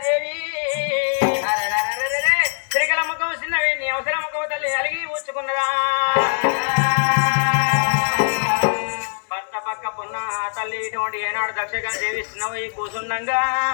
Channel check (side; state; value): right; silent; digital silence